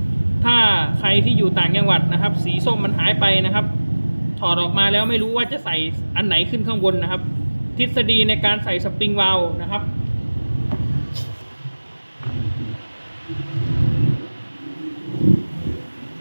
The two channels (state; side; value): inverted; both; correlation -1.00